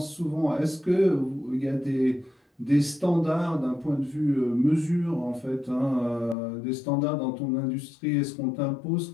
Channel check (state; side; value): drops out; right; at 6.4 s